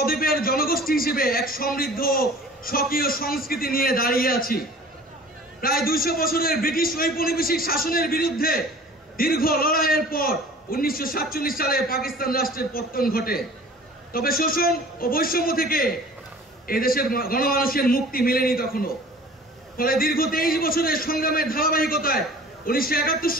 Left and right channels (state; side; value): normal; both; correlation 0.45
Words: জনগোষ্ঠী হিসেবে এক সমৃদ্ধ স্বকীয় সংস্কৃতি নিয়ে দাঁড়িয়ে আছি। প্রায় 200 বছরের ব্রিটিশ ঔপনিবেশিক শাসনের বিরুদ্ধে দীর্ঘ লড়াইয়ের পর 1947 সালে পাকিস্তান রাষ্ট্রের পতন ঘটে। তবে শোষণ ও বৈষম্য থেকে এই দেশের গণমানুষের মুক্তি মেলেনি তখনও। ফলে দীর্ঘ 23 বছরের সংগ্রামের ধারাবাহিকতায় 1971